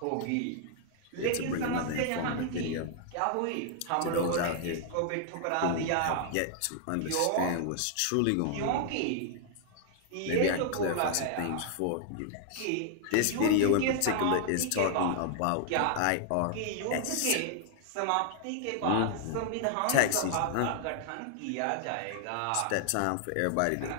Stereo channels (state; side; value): different; both; correlation 0.00